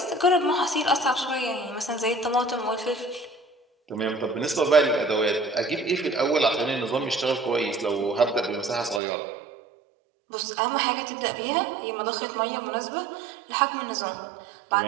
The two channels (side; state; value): left; drops out; at 9.0 s